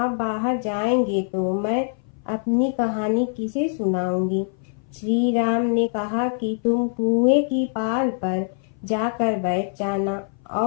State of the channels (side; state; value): right; silent; 58 dB below the other